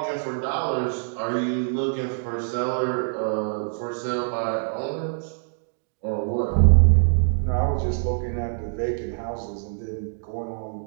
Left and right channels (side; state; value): left; silent; digital silence